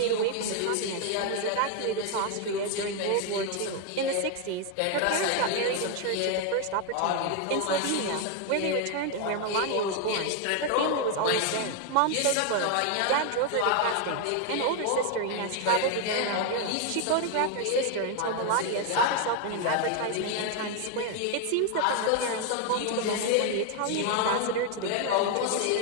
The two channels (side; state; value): both; different; correlation 0.01